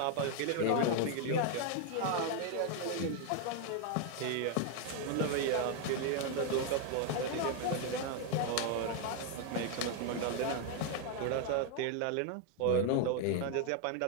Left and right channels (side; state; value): both; different; correlation 0.01